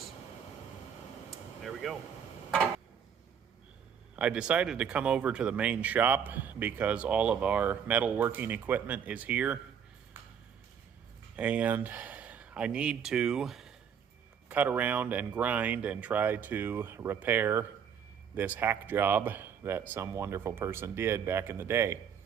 There we go. I decided to come over to the main shop because all of our metalworking equipment is here, and I need to cut around and grind and try to repair this hack job that some wonderful person did back in the day.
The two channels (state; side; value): quieter; left; 7.6 dB